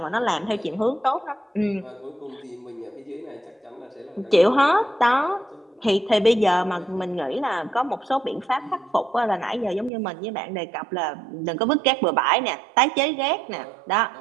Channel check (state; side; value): drops out; left; at 9.9 s